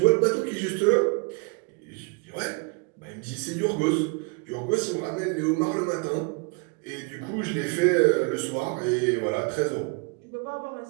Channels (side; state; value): left; quieter; 31.7 dB